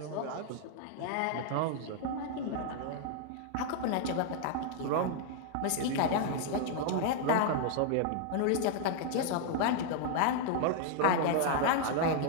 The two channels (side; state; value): both; different; correlation 0.00